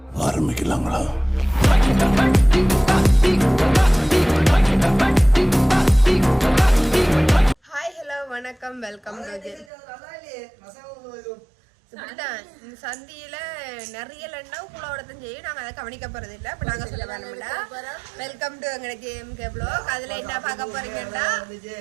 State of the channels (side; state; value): left; drops out; at 9.7 s